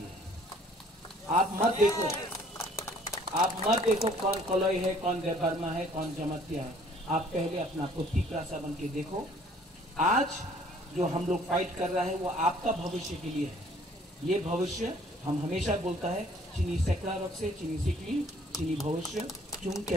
आप मत देखो कौन कलोई है, कौन देवबर्मा है, कौन जमतिया है। आप पहले अपना तीसरा बन के देखो। आज जो हम लोग फाइट कर रहा है वो आपका भविष्य के लिए है। ये भविष्य हम हमेशा बोलता है, चीनी सैकड़ा रख से चीनी सीखली, चीनी भविष्य चुन के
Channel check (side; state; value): both; normal; correlation 0.58